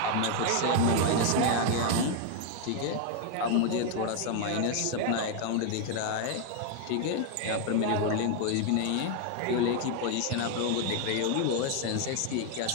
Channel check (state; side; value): different; both; correlation 0.01